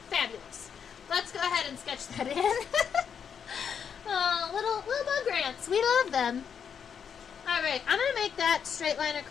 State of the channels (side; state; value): right; quieter; 7.3 dB